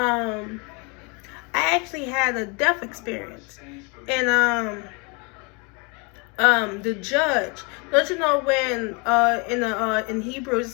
I actually had a death experience, and the judge. Don't you know when in Hebrew it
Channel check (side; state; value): right; quieter; 31.5 dB